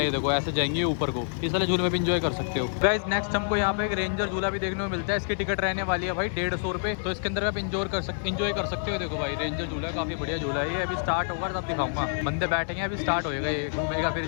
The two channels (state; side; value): silent; right; digital silence